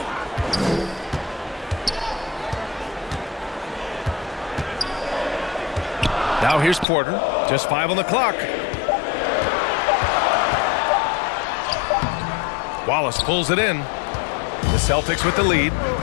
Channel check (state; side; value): drops out; right; at 6.9 s